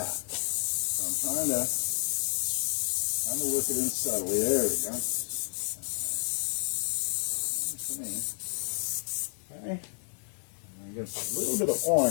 So I'm trying to work it in subtly. There we go. For me. Okay. I'm going to get a little bit of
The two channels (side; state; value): right; silent; 58 dB below the other